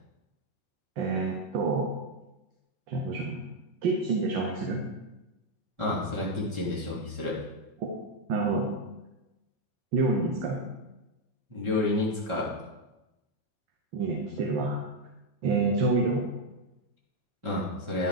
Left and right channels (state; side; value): late; left; 5.2 ms